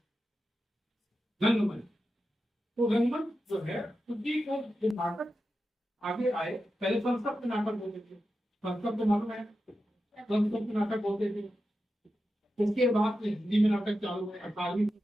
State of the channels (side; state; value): both; normal; correlation 0.90